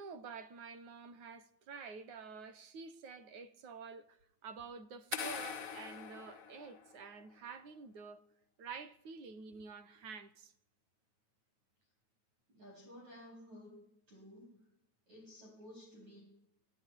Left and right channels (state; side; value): late; left; 9.3 ms